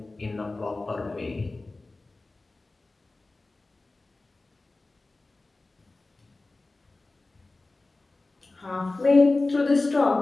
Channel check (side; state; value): right; quieter; 3.2 dB